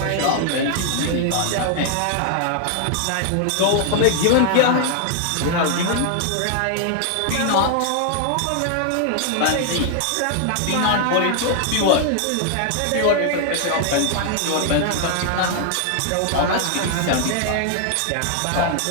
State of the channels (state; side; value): different; both; correlation 0.00